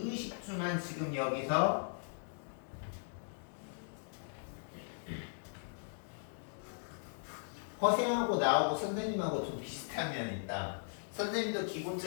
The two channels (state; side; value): silent; right; digital silence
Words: 의식주만 지금 여기서 허생하고 나하고 선생님하고 좀 비슷한 면이 있다. 선생님도